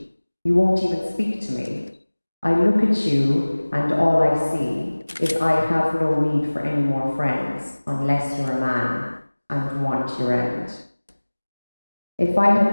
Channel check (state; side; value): inverted; both; correlation -1.00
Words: You won't even speak to me. I look at you and all I see is I have no need for any more friends unless you're a man and want your end. If I had